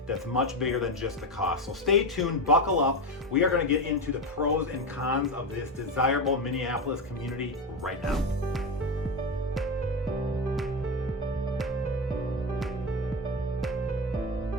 that's much bigger than just the cost. So stay tuned, buckle up. We are going to get into the pros and cons of this desirable Minneapolis community right now.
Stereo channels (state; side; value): normal; both; correlation 0.16